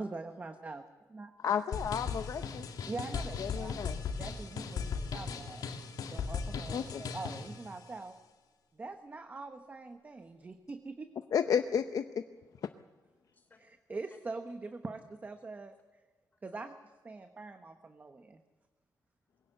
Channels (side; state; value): right; quieter; 4.6 dB